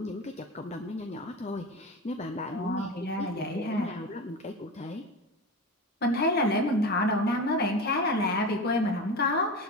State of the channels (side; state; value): both; normal; correlation 0.26